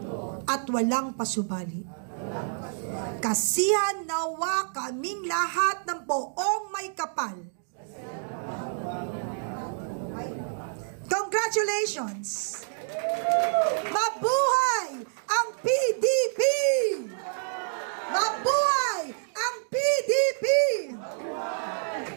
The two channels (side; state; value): left; silent; digital silence